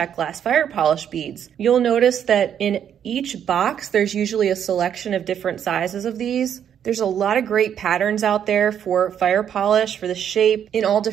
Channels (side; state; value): left; quieter; 9.0 dB